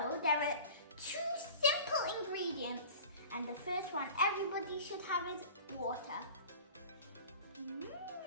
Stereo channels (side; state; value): both; inverted; correlation -0.40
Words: there are 2 simple ingredients, and the first one everybody should have is water.